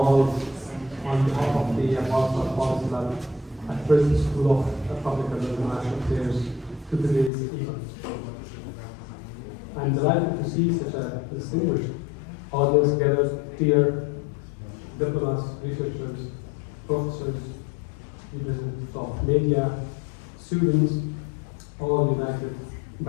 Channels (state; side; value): drops out; right; at 7.3 s